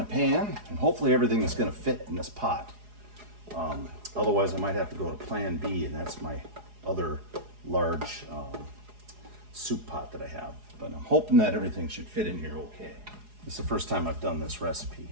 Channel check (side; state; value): left; late; 4.8 ms